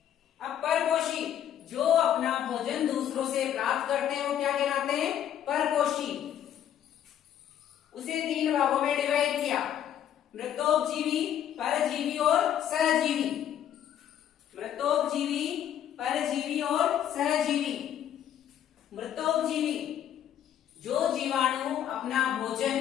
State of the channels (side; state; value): right; quieter; 10.3 dB